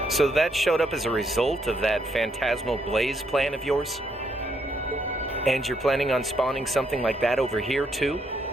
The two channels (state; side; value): normal; both; correlation 0.75